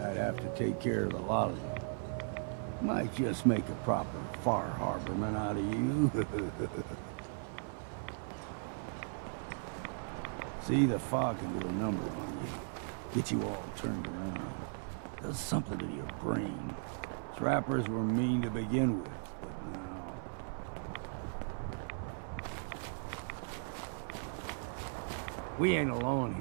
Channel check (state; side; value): silent; left; 53 dB below the other